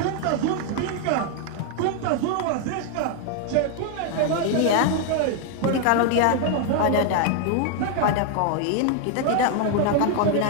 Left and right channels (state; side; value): different; both; correlation 0.00